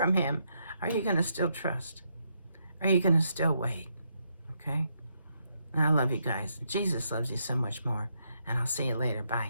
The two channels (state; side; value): inverted; both; correlation -0.78